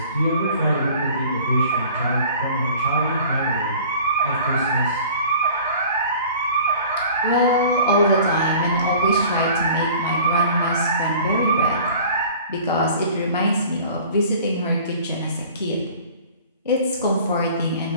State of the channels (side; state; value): both; inverted; correlation -0.46